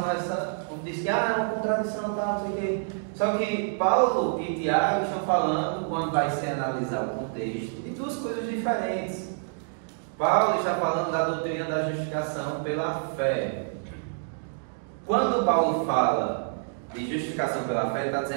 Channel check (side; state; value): left; silent; digital silence